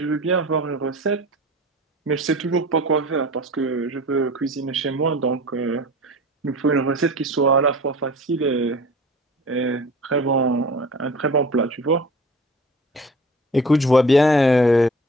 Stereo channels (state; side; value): normal; both; correlation 0.41